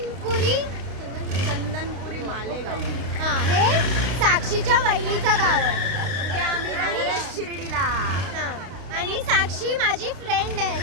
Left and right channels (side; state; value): left; late; 32 ms